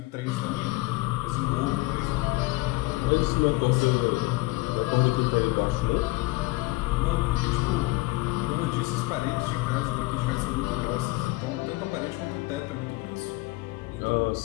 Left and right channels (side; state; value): right; quieter; 21.7 dB